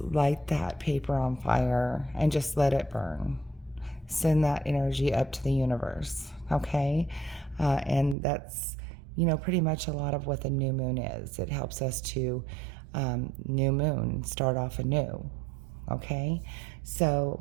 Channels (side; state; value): left; drops out; at 8.2 s